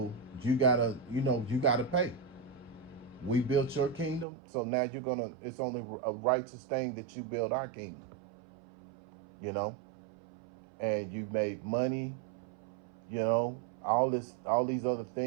you gotta pay. We built your kingdom, so now it's only a righteous thing that you build our kingdom, and you made money, all these other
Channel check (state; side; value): drops out; left; at 4.2 s